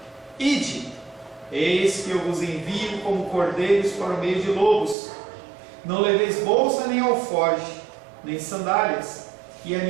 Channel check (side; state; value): left; drops out; at 5.0 s